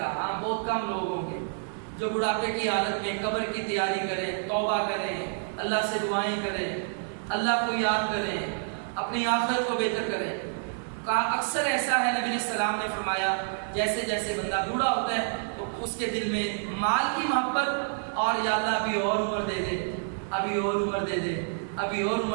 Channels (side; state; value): left; silent; 59 dB below the other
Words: ہاں بہت کم لوگ ہوں گے جو بڑھاپے کی حالت میں قبر کی تیاری کریں، توبہ کریں، اللہ سے دعائیں کریں، اللہ کو یاد کریں، اپنی آخرت کو بہتر کریں۔ کہا اکثر ایسا ہے، نبی علیہ السلام نے فرمایا جیسے جیسے بندہ بوڑھا ہوتا ہے تو اس کے دل میں مال کی محبت اور یا اللہ ابھی اور عمر دے دے، ابھی اور عمر دے دے، ابھی اور